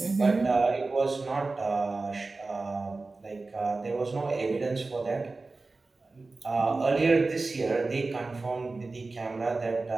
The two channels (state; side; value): quieter; left; 3.5 dB